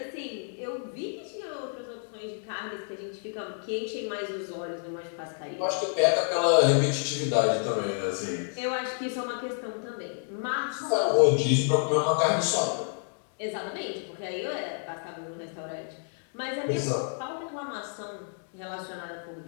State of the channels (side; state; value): right; silent; 58 dB below the other